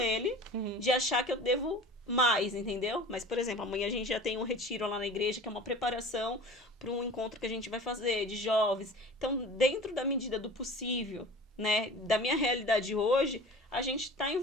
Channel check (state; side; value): normal; both; correlation 0.40